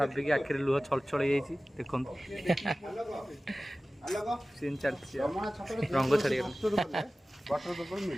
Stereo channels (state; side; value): normal; both; correlation 0.97